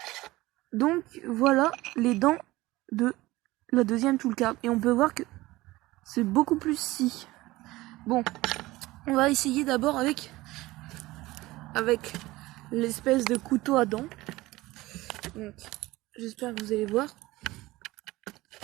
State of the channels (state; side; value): quieter; left; 19.0 dB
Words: Donc voilà les dents de la deuxième toolcard. Et on peut voir que c'est beaucoup plus scie. Bon, on va essayer d'abord avec l'espèce de couteau à dents. Donc j'espère que vous allez voir.